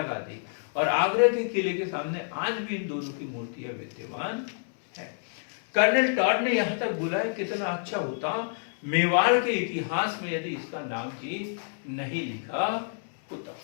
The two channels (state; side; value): silent; right; digital silence